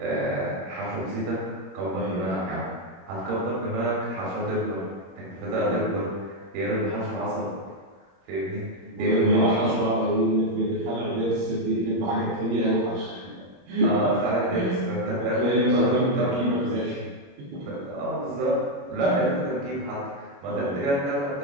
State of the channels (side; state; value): left; late; 21 ms